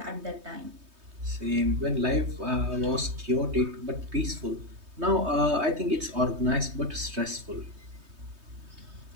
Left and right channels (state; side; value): late; left; 3.2 ms